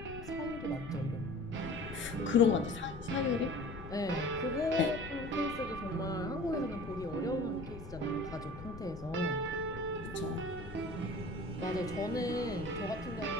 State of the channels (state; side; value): noise; left; rumble, 11 dB below the sound